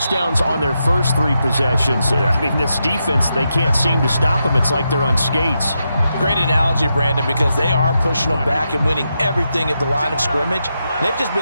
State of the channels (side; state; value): both; inverted; correlation -0.85